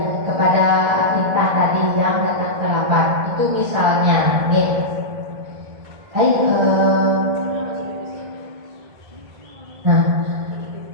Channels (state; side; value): late; left; 1.6 ms